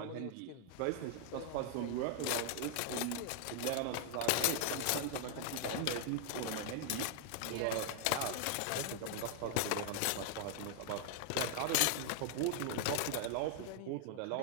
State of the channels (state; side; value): different; both; correlation 0.00